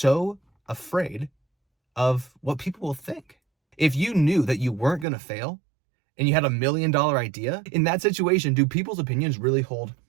afraid of what people will think. If you knew that you weren't going to fail and you had $1 million idea, in that situation, do people's opinions really hold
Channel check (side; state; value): left; drops out; at 5.1 s